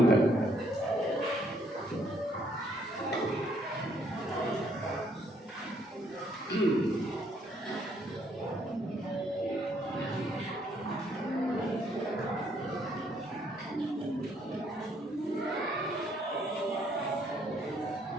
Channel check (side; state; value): both; normal; correlation 0.69